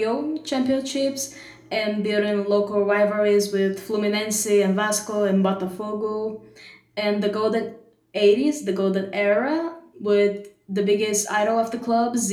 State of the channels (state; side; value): identical; both; correlation 1.00